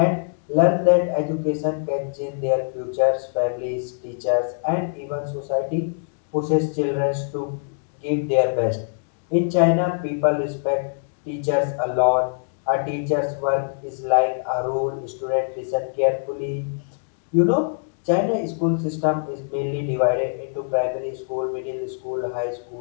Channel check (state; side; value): silent; right; digital silence